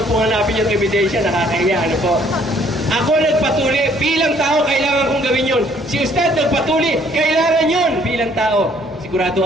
po hanapin yung ebidensya, nakakahiya. Ano po? Ako nagpatuli bilang tao, kailangan kong gawin yun. Si Ustad nagpatuli, kailangan yun bilang tao. Sigurado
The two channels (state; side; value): normal; both; correlation 0.62